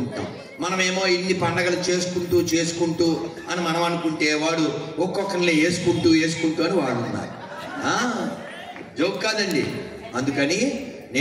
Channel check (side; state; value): both; identical; correlation 1.00